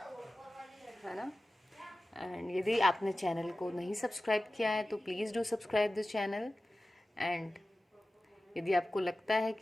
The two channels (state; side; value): normal; both; correlation 0.96